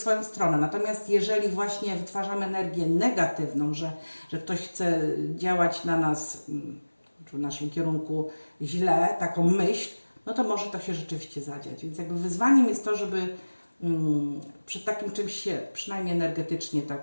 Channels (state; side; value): inverted; both; correlation -1.00